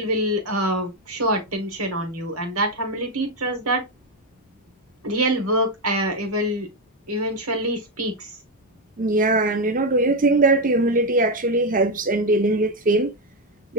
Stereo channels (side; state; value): both; normal; correlation 0.06